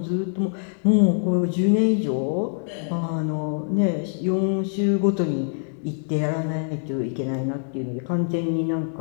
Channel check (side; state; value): right; silent; digital silence